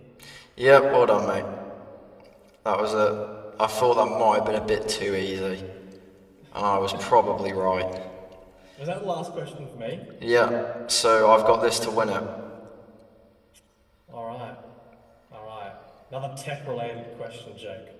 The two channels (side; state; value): both; identical; correlation 1.00